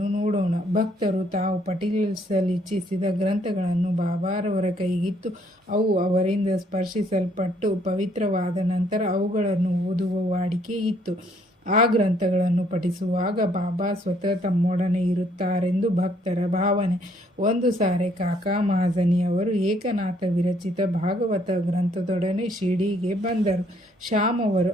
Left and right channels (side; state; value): both; normal; correlation 0.67